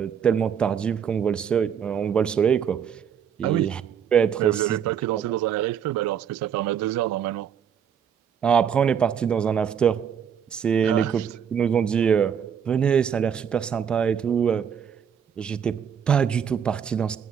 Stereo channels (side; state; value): left; quieter; 8.0 dB